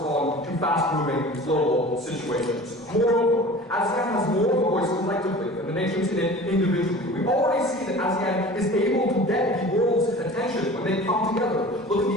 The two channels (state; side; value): normal; both; correlation 0.40